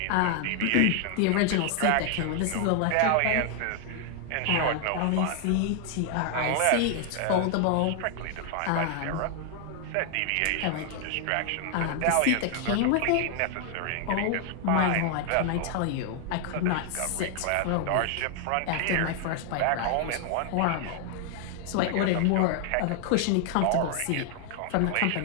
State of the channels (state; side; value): different; both; correlation 0.00